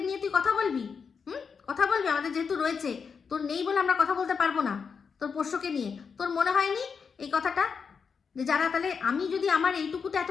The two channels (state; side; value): quieter; right; 5.9 dB